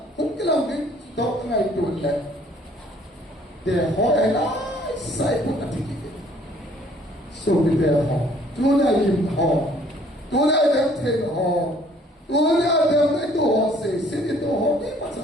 mungkin lagi tahu tengah itu le, dia orang yang saya pun nanti kita, so kita orang, Tuhan yang orang, Tuhan yang ten orang, Tuhan yang itu orang sini itu orang ni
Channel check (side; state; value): both; normal; correlation 0.59